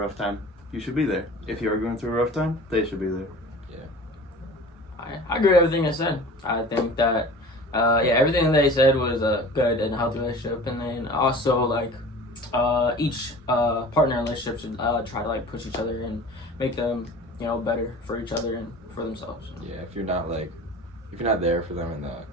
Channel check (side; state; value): both; normal; correlation 0.41